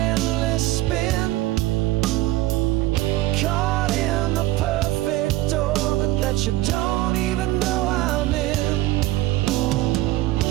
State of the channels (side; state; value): left; quieter; 16.6 dB